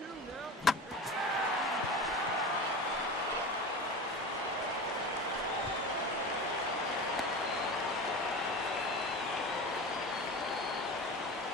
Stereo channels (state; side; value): normal; both; correlation 0.30